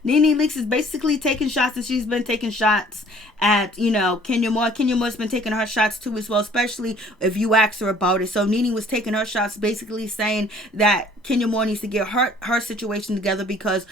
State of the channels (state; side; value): normal; both; correlation 0.55